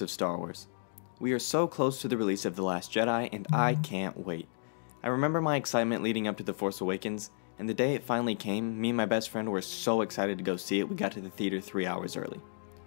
of Star Wars. We are so close to the release of The Last Jedi, and I can't wait. I remember my excitement leading up to The Force Awakens, and the day it finally came, me and my best friend were so excited to go see it we got to the theater 3 hours early.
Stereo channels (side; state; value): right; silent; digital silence